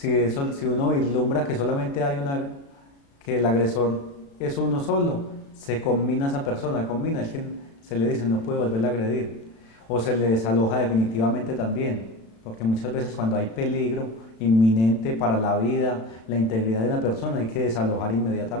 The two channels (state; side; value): late; right; 36 ms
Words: uno vislumbra que solamente que el agresor es uno solo, se combina esa persona, es que se le dice no puede volver a agredir, o se le desaloja definitivamente también, porque muchas veces cuando hay peligro inminente para la vida, la integridad de una persona, hay que desalojar